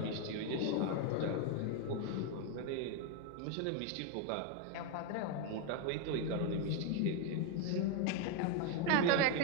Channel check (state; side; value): different; both; correlation 0.01